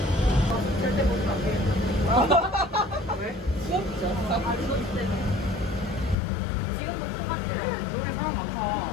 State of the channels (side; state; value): right; drops out; at 6.2 s